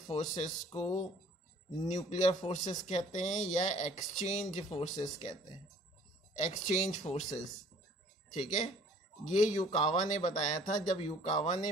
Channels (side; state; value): both; normal; correlation 0.54